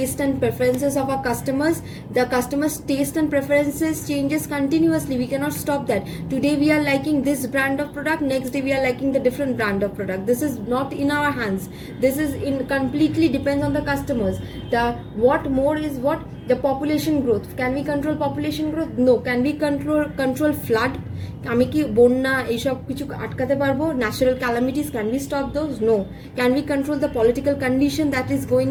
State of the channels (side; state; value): both; identical; correlation 1.00